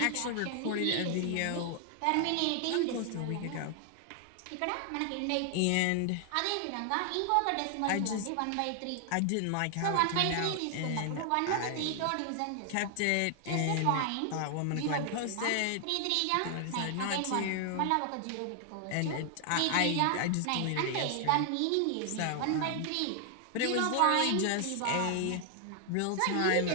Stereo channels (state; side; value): different; both; correlation 0.00